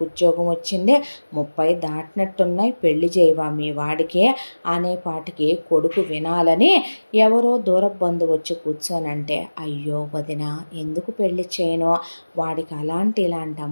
ఉద్యోగం వచ్చింది. 30 దాటినట్టున్నాయి, పెళ్లి చేయవా మీ వాడికి అనేపాటికి కొడుకు వినాలని ఎవరో దూర బంధువు వచ్చి కూర్చోనంటే, అయ్యో వదిన ఎందుకు పెళ్లి చేయను, వాడికి అలాంటి ఇలాంటి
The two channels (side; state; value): both; inverted; correlation -1.00